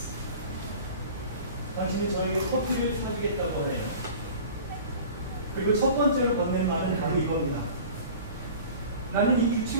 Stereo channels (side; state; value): both; inverted; correlation -0.41